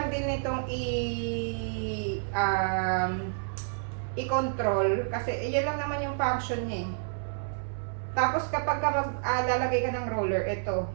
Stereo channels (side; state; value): left; silent; 58 dB below the other